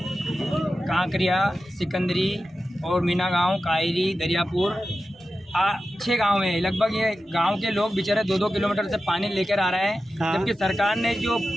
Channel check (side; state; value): both; normal; correlation 0.93